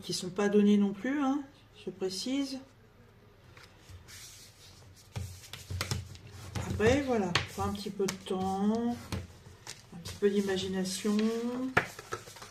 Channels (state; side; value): identical; both; correlation 1.00